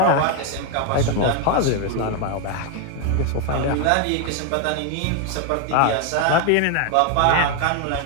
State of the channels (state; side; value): different; both; correlation 0.01